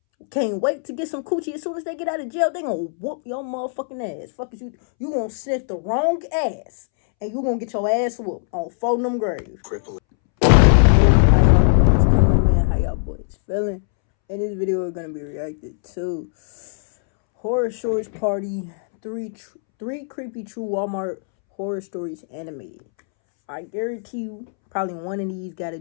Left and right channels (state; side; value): silent; right; 65 dB below the other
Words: can't wait to get some coochie. As soon as they get out of jail, they gonna whoop your motherfucking ass. Fuck is you. You gonna sniff the wrong ass. And you gonna get your ass whooped on 4 of them graves. Cripple. How y'all boys feeling? In this video, we're gonna be reacting to Horror Stories Party 3 creepy true Walmart horror stories animated. I guarantee you, probably one of these got to